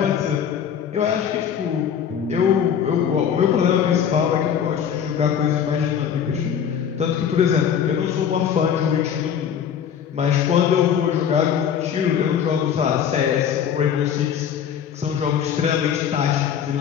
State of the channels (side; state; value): right; quieter; 8.3 dB